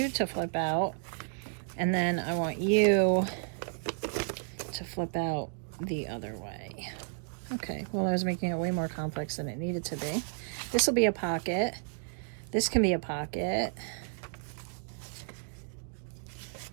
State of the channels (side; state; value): left; silent; digital silence